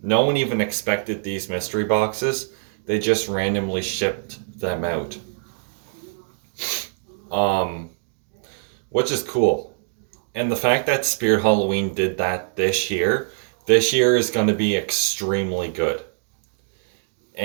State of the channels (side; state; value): left; silent; digital silence